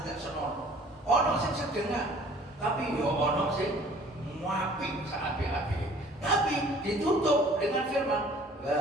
senonoh. Ono sing sedengan, tapi yo ono sing muapik saapi-api. Tapi ditutup dengan firman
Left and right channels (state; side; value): normal; both; correlation 0.52